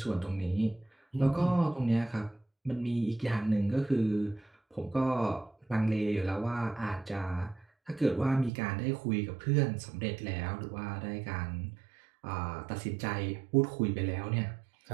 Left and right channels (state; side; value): drops out; left; at 8.5 s